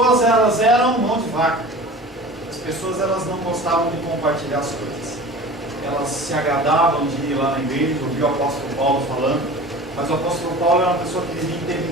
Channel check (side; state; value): both; normal; correlation 0.38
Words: elas eram mão de vaca. As pessoas, elas não gostavam de compartilhar as coisas. Elas se agradavam de ir lá na igreja, ouvir o apóstolo Paulo falando, mas o apóstolo Paulo era uma pessoa que vivia em